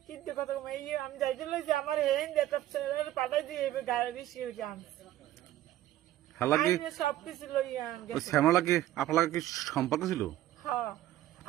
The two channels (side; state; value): left; quieter; 13.8 dB